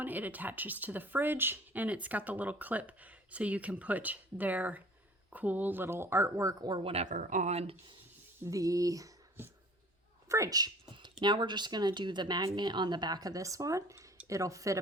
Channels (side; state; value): both; normal; correlation 0.49